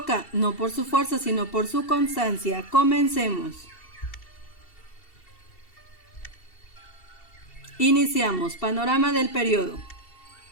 no por su fuerza, sino por su constancia. Comencemos. Iniciamos. Panorama del periodo.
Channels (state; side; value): late; right; 2.7 ms